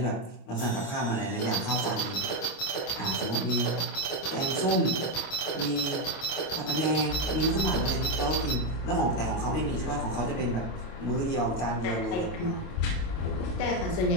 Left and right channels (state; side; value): late; right; 25 ms